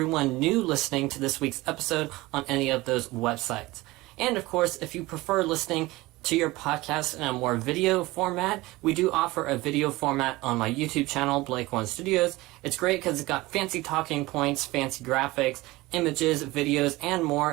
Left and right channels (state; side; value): quieter; left; 20.1 dB